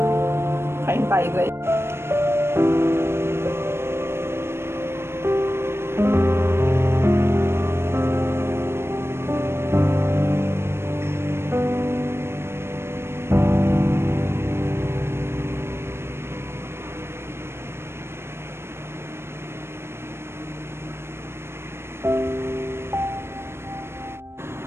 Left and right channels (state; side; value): late; left; 0.12 ms